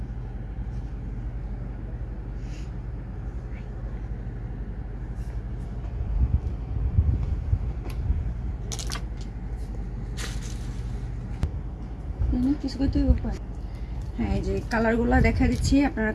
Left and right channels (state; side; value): identical; both; correlation 1.00